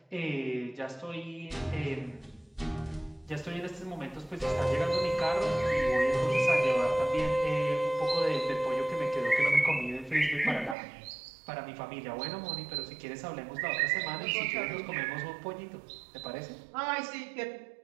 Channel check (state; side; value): drops out; left; at 10.8 s